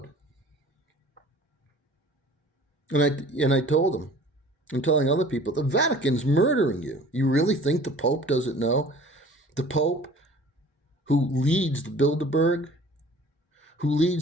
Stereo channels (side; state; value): both; normal; correlation 0.47